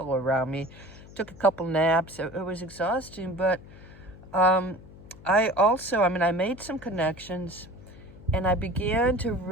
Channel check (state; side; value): noise; left; hum, 19 dB below the sound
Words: around me. Took a couple naps. It was exhausting, but I made some connections, and I began to